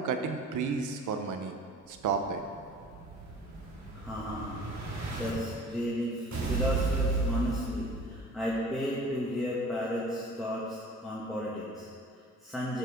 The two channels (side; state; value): both; normal; correlation 0.45